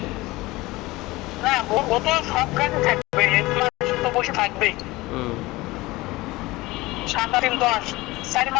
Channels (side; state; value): right; quieter; 20.4 dB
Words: না, ও তো সব গাড়ি থাকবে, 1 মাস তো বসে থাকবেই। হুম 7 3 10 4